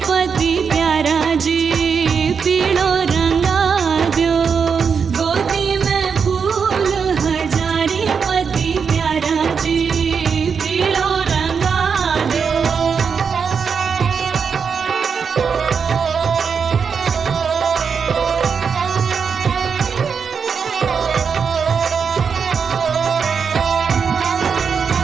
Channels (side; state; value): left; quieter; 6.2 dB